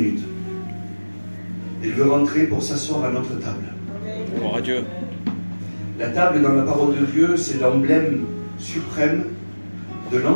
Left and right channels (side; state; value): both; inverted; correlation -1.00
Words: Il veut rentrer pour s'asseoir à notre table. Gloire à Dieu. La table dans la parole de Dieu, c'est l'emblème suprême de